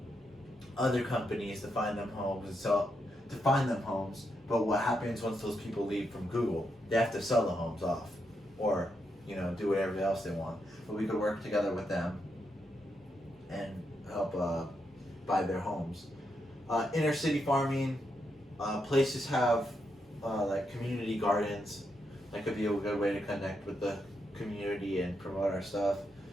other companies to find them homes But what happens once those people leave from Google? They have to sell the homes off, or do whatever else they want. But we could work together with them and help buy their homes. Inner city farming, places have like community gardens. That could be a good way to connect with the community and promote our stuff.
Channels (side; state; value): both; normal; correlation 0.82